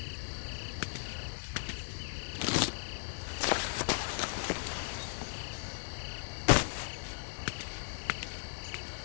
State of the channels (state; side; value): silent; right; 53 dB below the other